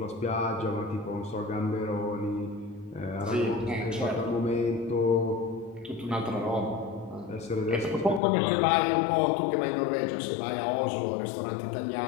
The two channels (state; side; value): drops out; right; at 8.2 s